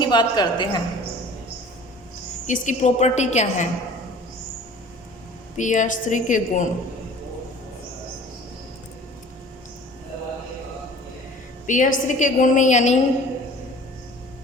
बात करते हैं, इसकी प्रॉपर्टी क्या है। PH3 के गुण, PH3 के गुण में यानी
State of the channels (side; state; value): both; normal; correlation 0.46